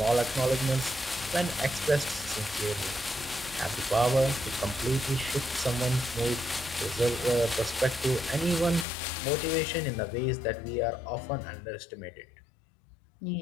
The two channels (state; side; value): drops out; right; at 8.8 s